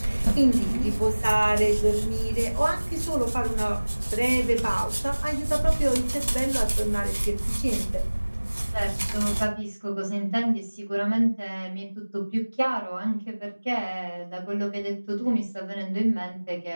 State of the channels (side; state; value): both; inverted; correlation -1.00